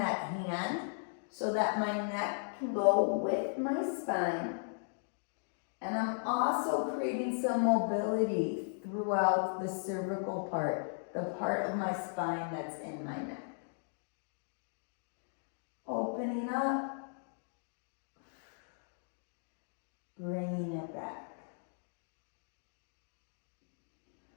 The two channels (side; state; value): right; silent; digital silence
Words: hand so that my neck can go with my spine. And I'm also creating some mobility throughout the cervical part, the part of my spine that's in my neck. Opening up, bringing it back.